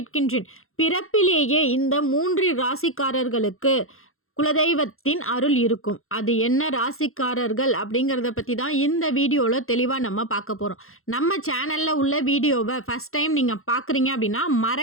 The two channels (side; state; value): right; late; 0.61 ms